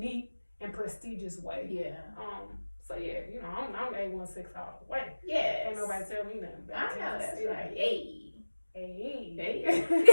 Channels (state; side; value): inverted; both; correlation -1.00